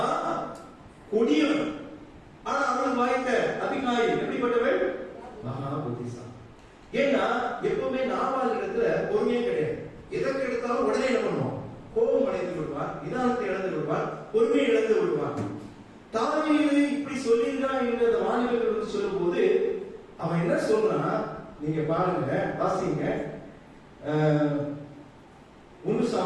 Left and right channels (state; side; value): identical; both; correlation 1.00